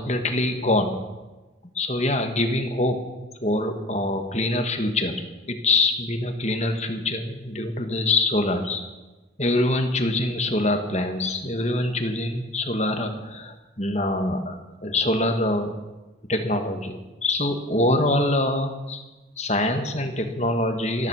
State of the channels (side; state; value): both; normal; correlation 0.41